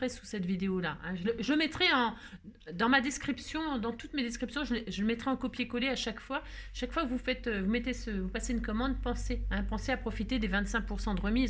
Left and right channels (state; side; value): identical; both; correlation 1.00